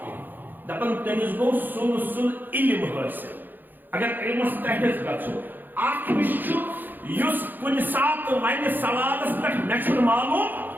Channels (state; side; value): late; left; 0.089 ms